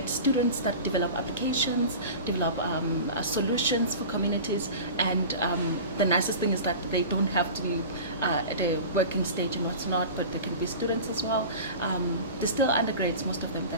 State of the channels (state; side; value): inverted; both; correlation -0.35